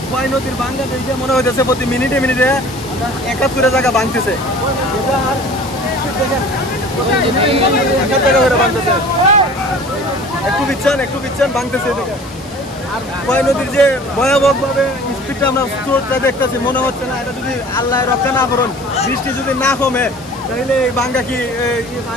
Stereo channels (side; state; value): both; normal; correlation 0.45